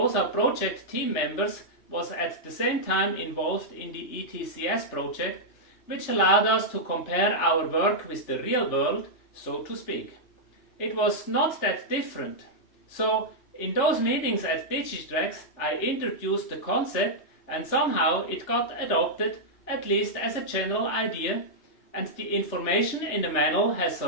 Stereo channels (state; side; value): late; right; 3.3 ms